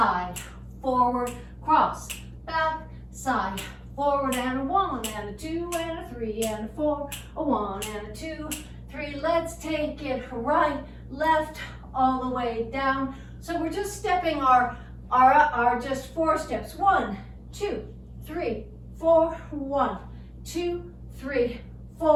forward, cross, back, side, forward, and a 1, and a 2, and a 3, and a 4, a 1, and a 2, 3. Let's take it right, left, all the way down. So we're just stepping our just 4 steps. 1, 2, 3, 4, 1, 2, 3,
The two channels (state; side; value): identical; both; correlation 1.00